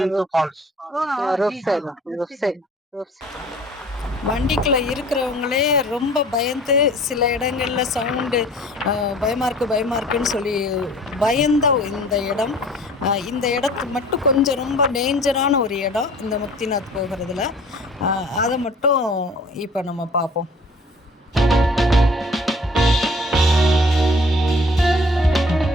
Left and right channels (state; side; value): normal; both; correlation 0.50